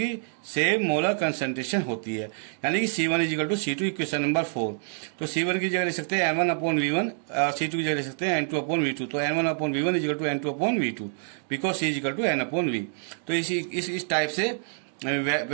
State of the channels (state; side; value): silent; left; digital silence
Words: सेम मोलर कंसंट्रेशन होती है, यानी कि C1 is equal to C2, equation number 4। तो C1 की जगह ले सकते हैं N1 अपॉन V1, C2 की जगह ले सकते हैं N2 अपॉन V2। तो N1 upon V1 is equal to N2 upon V2, because C is equal to N upon V। तो इस टाइप से